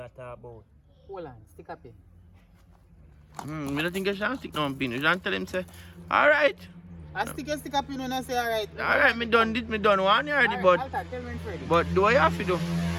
talking about. Hold on, stick up here. I don't think I should stick no pin. You should tell him say, alright. I stick up, you know, and I say alright. Alright, me done one already, but Alta, tell me Freddy. but do I have to do?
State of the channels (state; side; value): identical; both; correlation 1.00